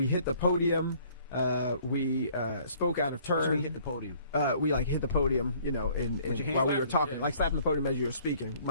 hit the podium, we spoke out of turn. So we hit the podium. We hit the podium, while we were talking, like slapping the podium as you were speaking.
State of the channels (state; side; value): inverted; both; correlation -0.58